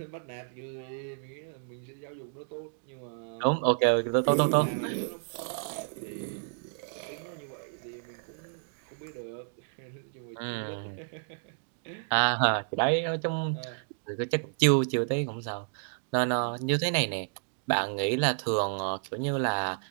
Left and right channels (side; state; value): left; silent; digital silence